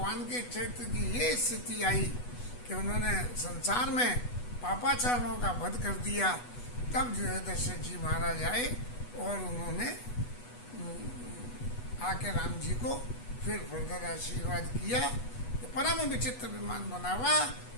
के चरित्र की ये स्थिति आई कि उन्होंने संसार में पापाचारों का वध कर दिया, तब जो है दशरथ जी महाराज आए और उन्होंने आके राम जी को फिर फर्दर आशीर्वाद किया। तो परम विचित्र विमान बनावा,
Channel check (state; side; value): late; right; 8.2 ms